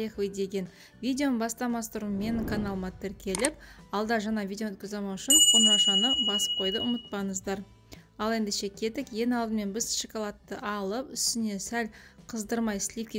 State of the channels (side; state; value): both; identical; correlation 1.00